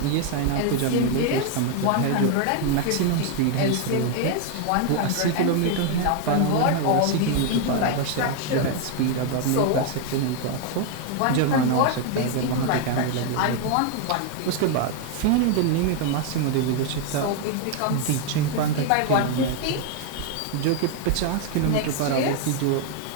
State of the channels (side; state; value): both; different; correlation 0.00